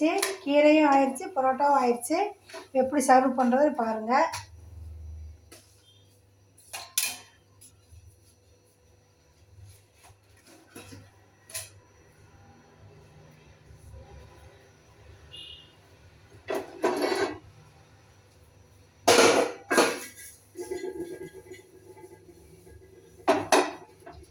கீரையும் ஆயிடுச்சு, பரோட்டாவும் ஆயிடுச்சு. எப்படி சர்வ் பண்ணுறது பாருங்கள்.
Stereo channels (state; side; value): identical; both; correlation 1.00